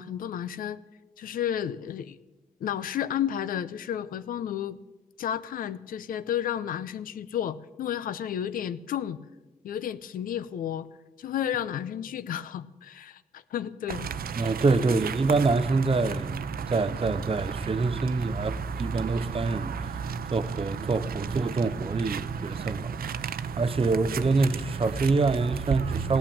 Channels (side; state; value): both; normal; correlation 0.63